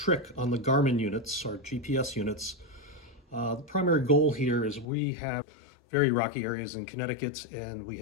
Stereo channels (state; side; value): drops out; right; at 4.9 s